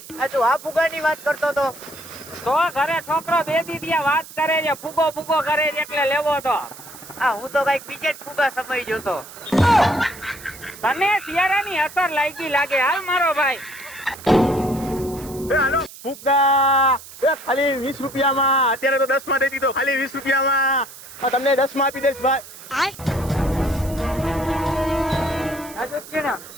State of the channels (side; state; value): right; noise; hiss, 17 dB below the sound